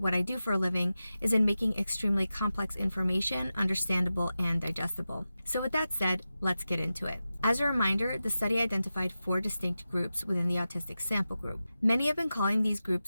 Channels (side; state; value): both; inverted; correlation -0.93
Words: I do for a living, is in making extremely complex information understandable and digestible. So with that said, let's get into it. As a reminder, the study identified 4 distinct groups within the autistic sample group. Many have been calling these